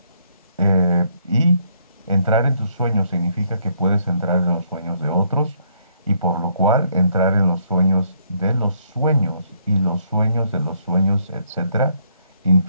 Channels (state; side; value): inverted; both; correlation -0.70